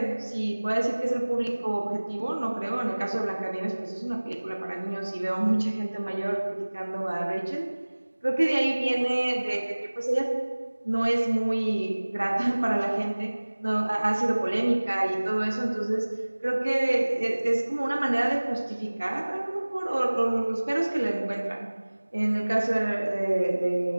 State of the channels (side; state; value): both; inverted; correlation -1.00